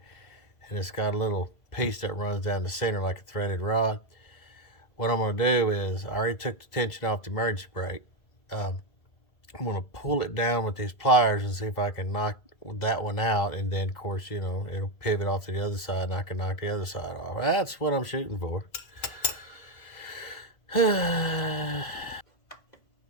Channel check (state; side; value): late; right; 2.0 ms